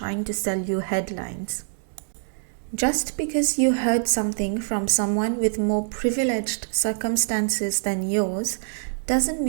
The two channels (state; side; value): silent; left; digital silence